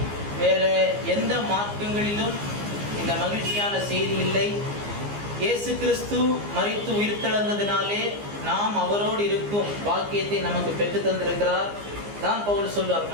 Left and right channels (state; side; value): late; left; 15 ms